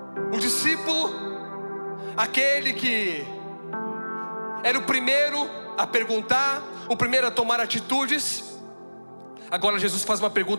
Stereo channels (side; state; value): both; inverted; correlation -1.00